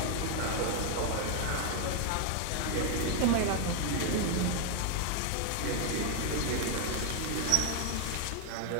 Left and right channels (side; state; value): both; different; correlation 0.01